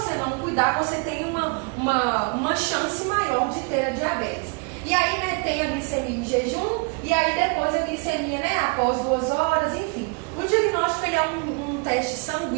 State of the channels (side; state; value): left; quieter; 34.0 dB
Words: não cuidar, você tem uma chance maior de ter a diabetes. E aí, né, tem a glicemia em jejum, e aí depois a glicemia, né, após 2 horas, enfim. O diagnóstico ele é um teste